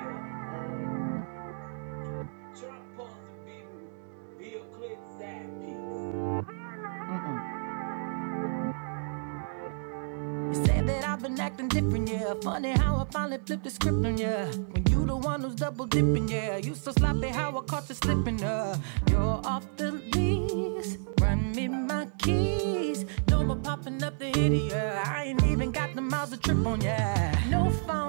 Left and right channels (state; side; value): silent; left; digital silence